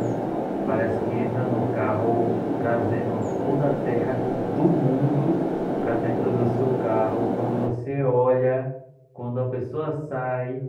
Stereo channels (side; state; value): both; identical; correlation 1.00